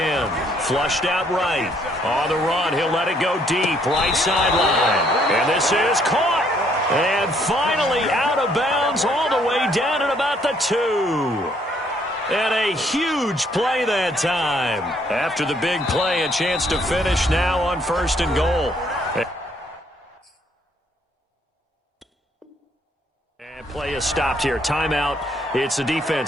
Flushed out right. On the run, he'll let it go deep, right sideline. And this is caught. And finally out of bounds all the way down at about the 2. And a huge play that time. After the big play, a chance to finish now on 1st and goal. And play is stopped here. Timeout. It's the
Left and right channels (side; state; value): both; normal; correlation 0.67